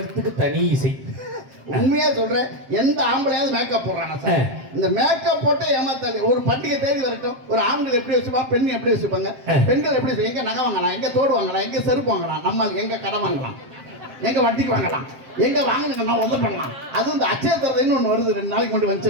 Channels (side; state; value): left; late; 7.6 ms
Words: தனி இசை. உண்மையா சொல்றேன், எந்த ஆம்பளையாவது மேக்கப் போடுறானா சார்? இந்த மேக்கப் போட்டு ஏமாத்தாலே. ஒரு பண்டிகை தேதி வரட்டும், ஒரு ஆண்கள் எப்படி வச்சுப்பாங்க, பெண் எப்படி வச்சுப்பாங்க? பெண்கள் எப்படி எங்க நகை வாங்கலாம், எங்க தோடு வாங்கலாம், எங்க செருப்பு வாங்கலாம், நம்ம எங்க கடை வாங்கலாம், எங்க வட்டிக்கு வாங்கலாம், எங்க வாங்கினா உதவி பண்ணலாம். அதுவும் இந்த அச்சய தரதுன்னு ஒன்று வருது, 2 நாளைக்கு கொண்டு